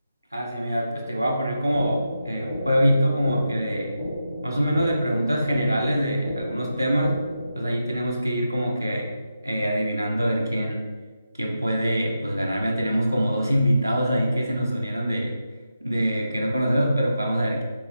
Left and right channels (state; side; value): inverted; both; correlation -0.88